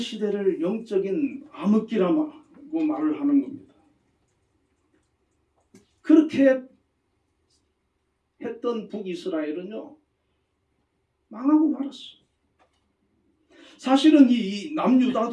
영적인 암흑기라고 말을 하는 겁니다. 그렇게 했던 북이스라엘은요 망하고 말았어요. 사실은 이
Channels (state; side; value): identical; both; correlation 1.00